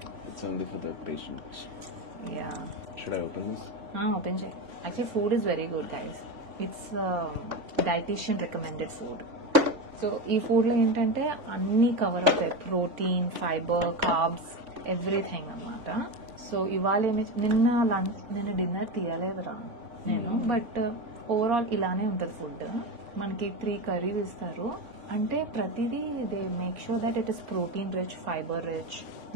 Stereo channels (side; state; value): left; late; 3.5 ms